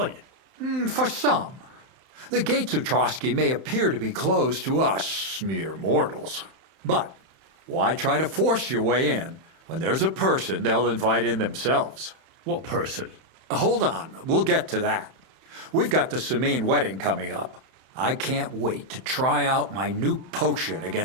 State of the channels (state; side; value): late; left; 31 ms